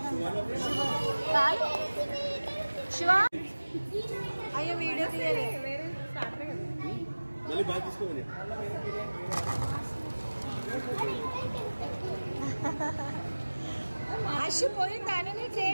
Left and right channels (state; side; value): inverted; both; correlation -1.00